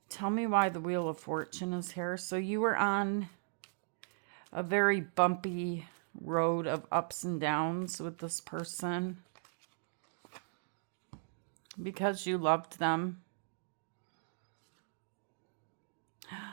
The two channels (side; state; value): left; silent; digital silence